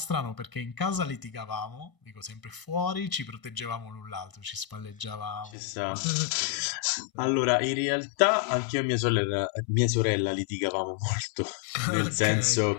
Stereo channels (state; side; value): drops out; right; at 5.5 s